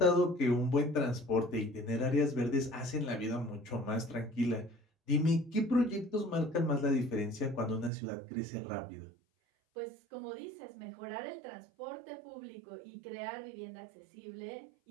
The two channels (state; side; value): drops out; left; at 7.9 s